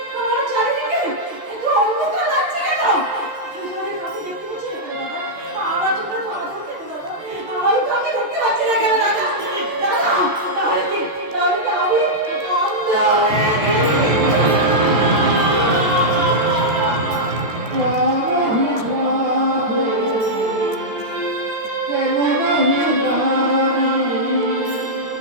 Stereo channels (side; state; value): left; late; 14 ms